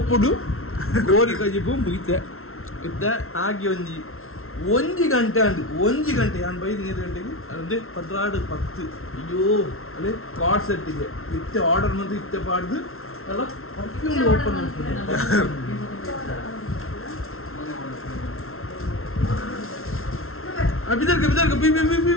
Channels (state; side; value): late; right; 0.62 ms